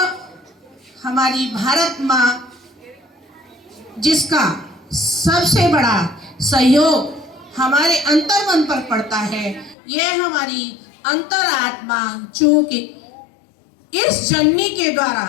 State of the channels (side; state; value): right; drops out; at 9.8 s